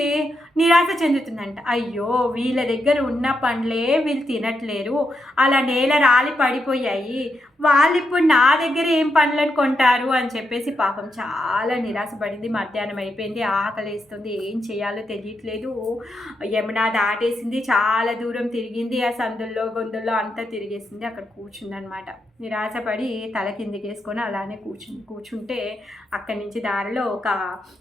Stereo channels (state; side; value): normal; both; correlation 0.83